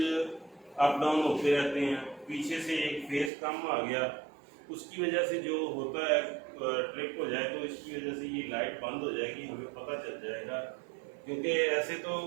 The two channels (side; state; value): left; drops out; at 3.3 s